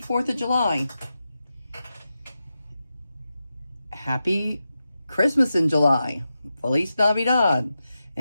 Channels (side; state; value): both; inverted; correlation -0.90